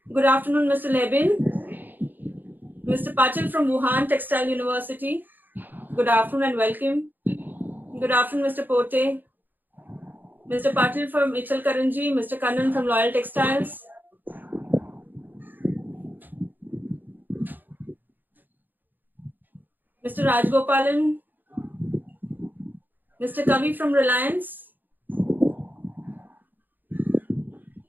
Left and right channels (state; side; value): late; left; 0.089 ms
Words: Good afternoon, Mr. Lebin. Mr. Patil from Wuhan Textile University. Good afternoon and welcome. Good afternoon, Mr. Pote. Mr. Patil from Michal Karanji, Mr. Kannan from Loyal Textiles. Mr. Rajgopalan. Mr. Kavi from Reliance.